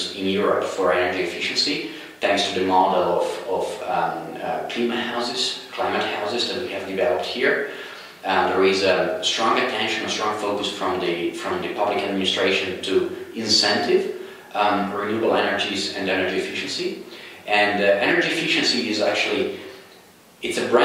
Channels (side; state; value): both; identical; correlation 1.00